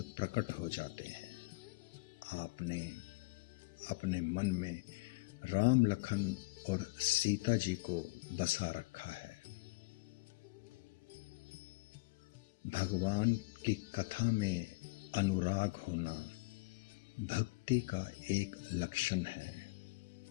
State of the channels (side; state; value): right; quieter; 26.0 dB